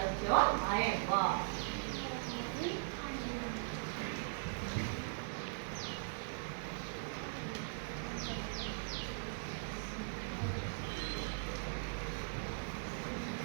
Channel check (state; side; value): silent; left; digital silence